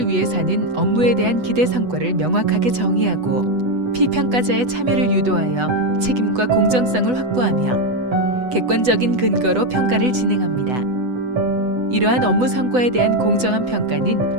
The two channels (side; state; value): left; late; 8.0 ms